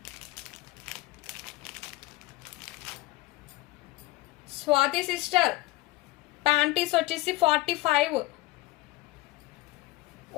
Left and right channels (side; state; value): right; quieter; 18.5 dB